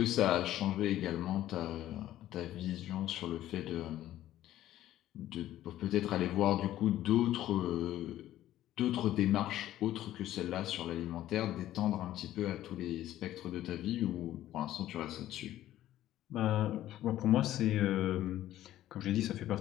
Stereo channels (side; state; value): right; quieter; 13.5 dB